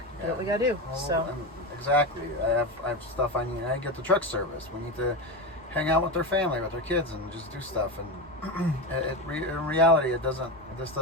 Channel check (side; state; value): both; normal; correlation 0.18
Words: Do what we gotta do. So exactly, I have stuff I need. I get the truck service. We need to hang out with their family, with their kids, and just do stuff. And in reality, this